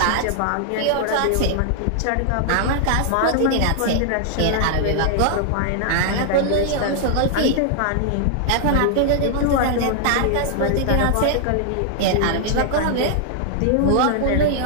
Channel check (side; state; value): both; different; correlation -0.01